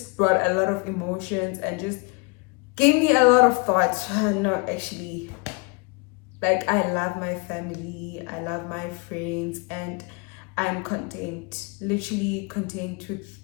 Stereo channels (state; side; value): quieter; right; 30.6 dB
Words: brought a lot of emotions and just gave me a lot of thoughts. No, actually, like, I love my family, I love my friends, and I'm content, literally content with